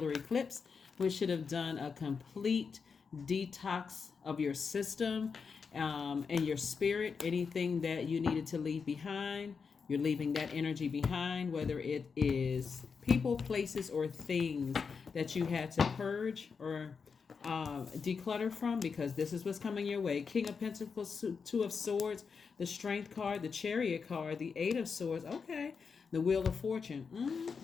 eclipse, which should have done a complete detox of your system and your spirit. Anything that you needed to leave behind, you're leaving that energy behind, whether it is people, places, or things that you had to purge or declutter from, because this is what's coming your way. King of Pentacles, Two of Swords, the Strength card, the Chariot card, the Eight of Swords. Okay, the Wheel of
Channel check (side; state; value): right; quieter; 5.6 dB